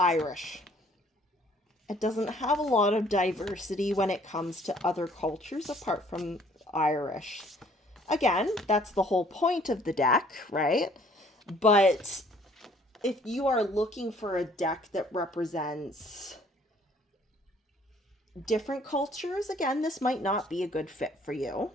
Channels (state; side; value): normal; both; correlation 0.59